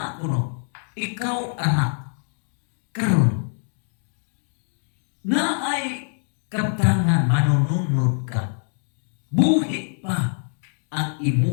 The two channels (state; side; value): silent; right; 62 dB below the other